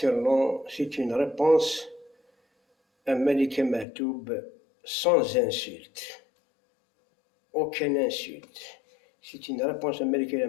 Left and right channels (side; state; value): right; drops out; at 3.9 s